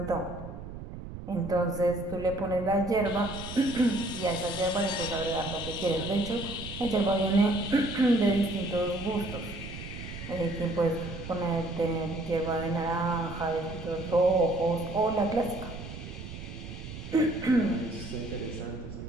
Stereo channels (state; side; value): noise; right; rumble, 10 dB below the sound